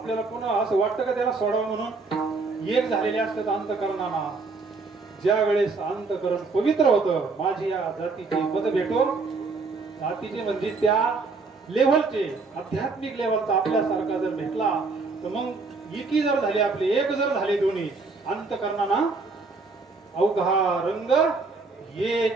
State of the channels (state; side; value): quieter; left; 4.1 dB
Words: पुन्हा असं वाटतं का त्याला सोडावं म्हणून? एक झालेले असतात अंतकरणाला. ज्या वेळेस अंतकरण पवित्र होतं, माझी या जातीची पद भेटो. जातीचे म्हणजे त्या लेव्हलचे आध्यात्मिक लेव्हलचा आपल्यासारखा जर भेटला तर मग एकी जर झाले, आपले एक जर झाले दोन्ही अंतकरणाना अवघा रंग